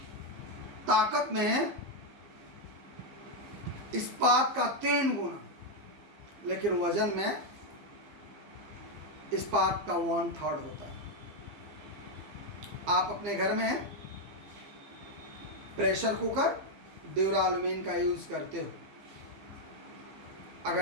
ताकत में इस्पात का 3 गुना, लेकिन वजन में इस्पात का 1/3 होता है. आप अपने घर में प्रेशर कुकर ड्यूरालुमीन का यूज करते हो.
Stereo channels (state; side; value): late; left; 15 ms